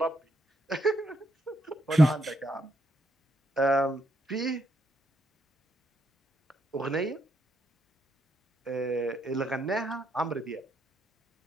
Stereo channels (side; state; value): both; normal; correlation 0.77